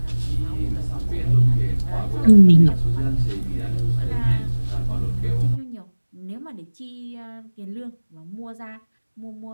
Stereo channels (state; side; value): inverted; both; correlation -1.00